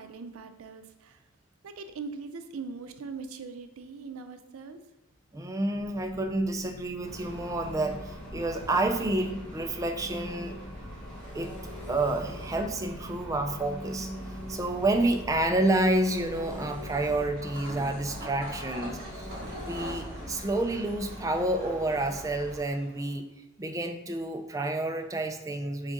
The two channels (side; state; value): both; normal; correlation 0.57